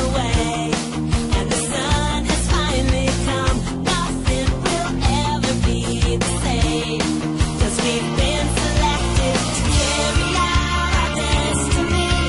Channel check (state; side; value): identical; both; correlation 1.00